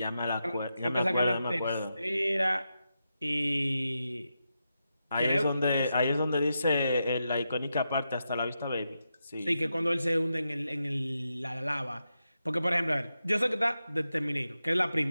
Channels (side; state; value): both; inverted; correlation -0.87